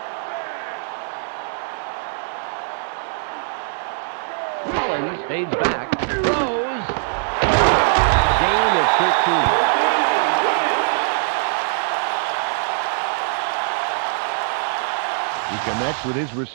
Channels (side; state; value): left; silent; 64 dB below the other